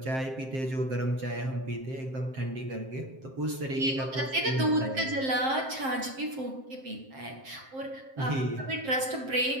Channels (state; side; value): late; left; 7.6 ms